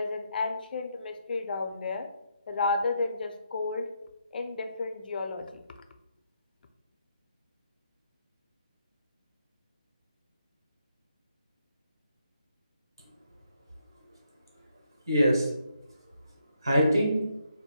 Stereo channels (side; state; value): both; inverted; correlation -0.78